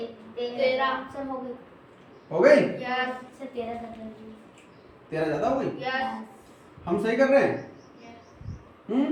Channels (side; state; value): both; identical; correlation 1.00